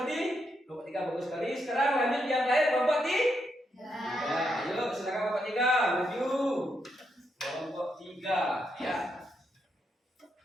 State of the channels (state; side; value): normal; both; correlation 0.80